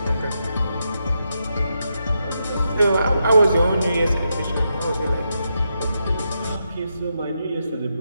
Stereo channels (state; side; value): inverted; both; correlation -0.84